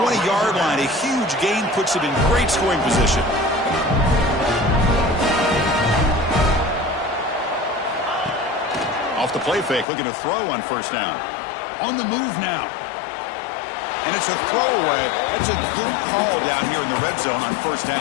line. A huge gain puts it in great scoring position. Off the play fake, looking to throw on first down. On the move now. And it's a throwaway. That's a good call down here in the red zone on first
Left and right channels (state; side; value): drops out; right; at 9.9 s